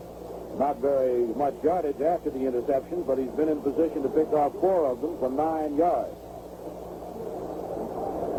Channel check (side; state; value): both; identical; correlation 1.00